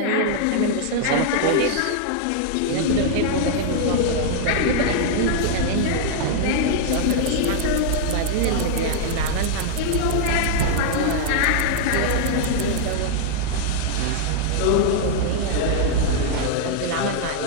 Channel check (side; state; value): both; different; correlation -0.01